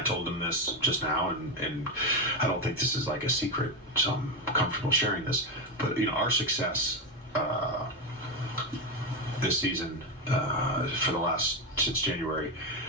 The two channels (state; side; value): normal; both; correlation 0.11